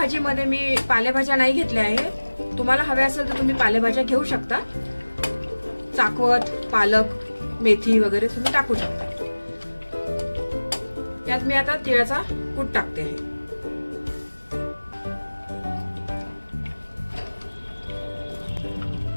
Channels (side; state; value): both; inverted; correlation -1.00